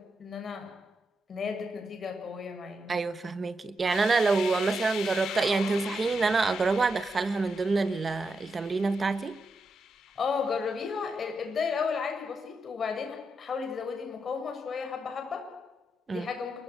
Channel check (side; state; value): both; normal; correlation 0.85